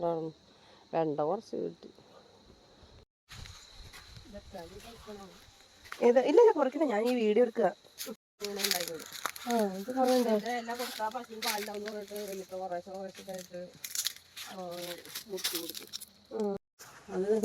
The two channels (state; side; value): identical; both; correlation 1.00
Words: വെണ്ട കുറച്ച് കിട്ടി. ഇല്ല കുറയ്ക്കണ, ഞാൻ ഈ വീഡിയോ എടുക്കുക.